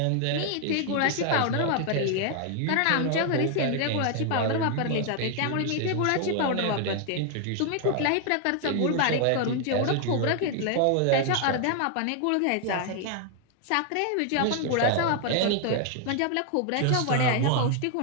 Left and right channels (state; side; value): different; both; correlation 0.00